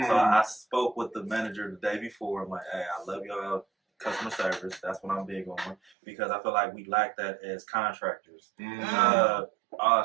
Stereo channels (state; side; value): drops out; left; at 5.8 s